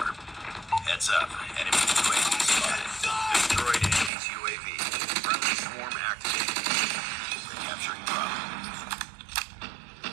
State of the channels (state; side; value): drops out; left; at 4.1 s